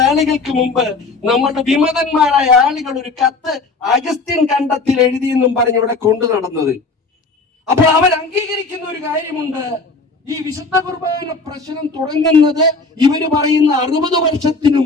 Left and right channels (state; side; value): quieter; right; 3.8 dB